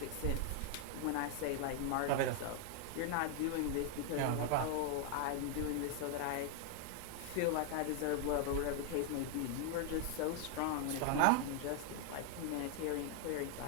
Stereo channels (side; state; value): both; different; correlation 0.00